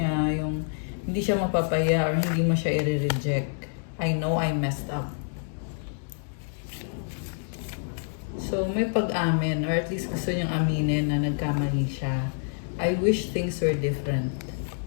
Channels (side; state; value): right; silent; digital silence